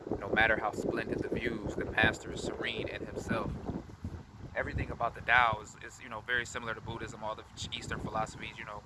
no matter how splendid the views, the master is serene in himself. Everything about the Tao is very similar to Buddhism, all the Eastern philosophies,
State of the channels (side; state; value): both; identical; correlation 1.00